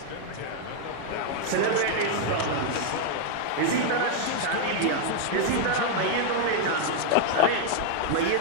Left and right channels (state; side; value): different; both; correlation 0.00